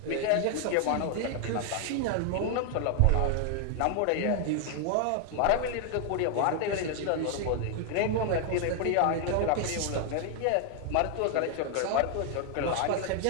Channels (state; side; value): different; both; correlation 0.00